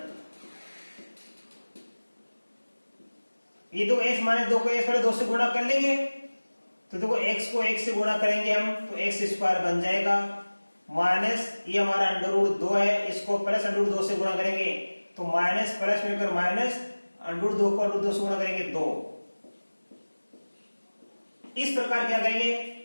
ये दो x -2 को x 2 से गुणा कर लेंगे, तो देखो x को x से गुणा करेंगे हम तो x² बन जाएगा, माइनस ये हमारा √2 है, इसको प्लस √2 से गुणा करेंगे तो माइनस प्लस मिलकर माइनस, √2 को √2 से गुणा करेंगे 2। इस प्रकार क्या करेंगे?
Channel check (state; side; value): inverted; both; correlation -1.00